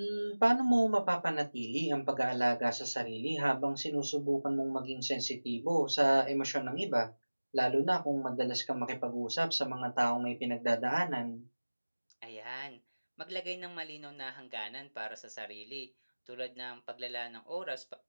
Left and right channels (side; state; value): both; inverted; correlation -1.00